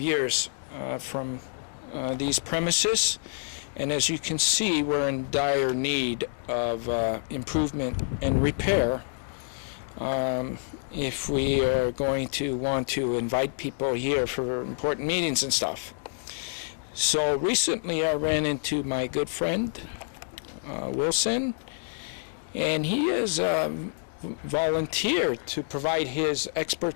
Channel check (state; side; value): silent; right; digital silence